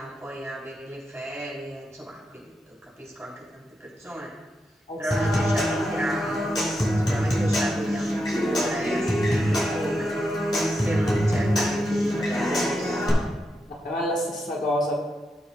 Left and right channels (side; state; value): both; normal; correlation 0.85